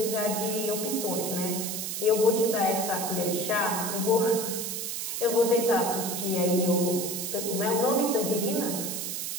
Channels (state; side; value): noise; right; hiss, 4 dB below the sound